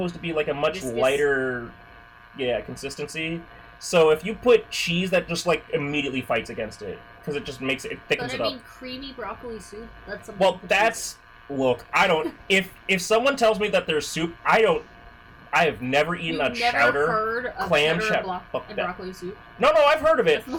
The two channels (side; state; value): both; identical; correlation 1.00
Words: to be like a much lighter consistency. So if you put cheese, that just like immediately fights against it. Because it just makes it thickens it up. But I mean, creamy broccoli soup. That's something. Well, that's look. I don't. If someone tells me that there's soup, I have never eaten a chowder heard of clam chowder and broccoli soup. No, I've heard of it.